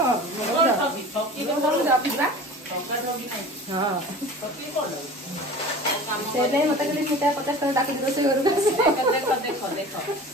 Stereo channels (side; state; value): both; normal; correlation 0.39